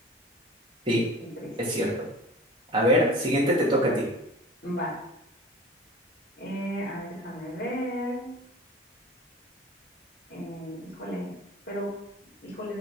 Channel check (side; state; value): both; normal; correlation 0.40